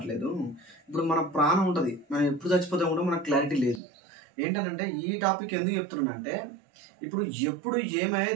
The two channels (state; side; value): drops out; left; at 3.8 s